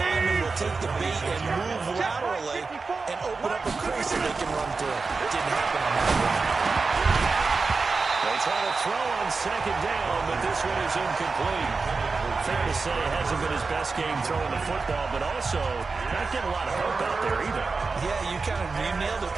will take the bait and move laterally and open up a crease that they can run through. It didn't happen on that one. They try to throw on second down, but this one is incomplete. Fair to say it hasn't been his best game throwing the football, but also not getting a lot of help out there either. Yeah, you nailed it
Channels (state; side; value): quieter; left; 4.3 dB